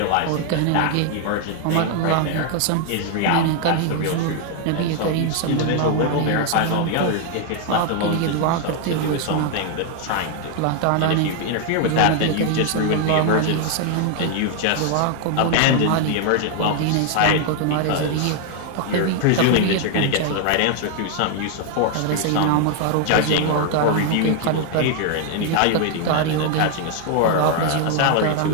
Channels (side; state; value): both; different; correlation 0.00